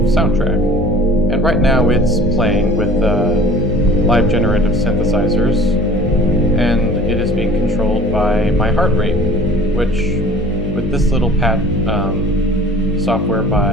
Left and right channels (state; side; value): normal; both; correlation 0.46